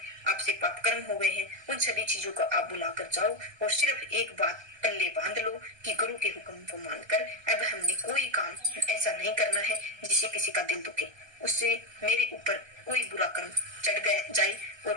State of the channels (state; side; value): late; left; 1.3 ms